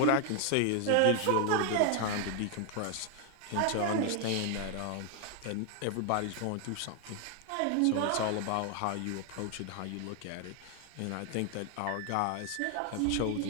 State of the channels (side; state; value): both; different; correlation 0.00